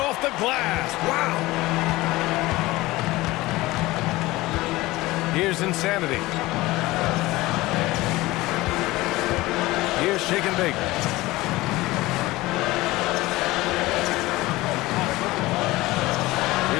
the glass. Wow. Here's Insanity. Here's Shake and Bake.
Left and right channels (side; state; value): right; quieter; 19.3 dB